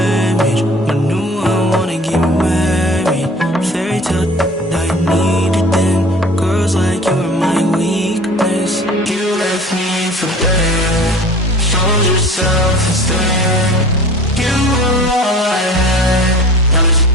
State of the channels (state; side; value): normal; both; correlation 0.44